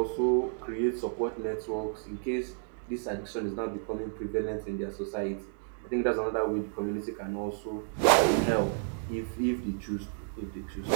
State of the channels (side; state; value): left; silent; 57 dB below the other